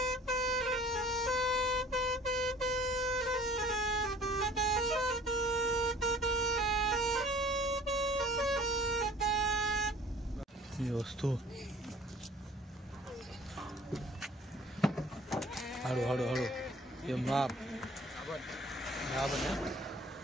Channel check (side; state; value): both; normal; correlation 0.51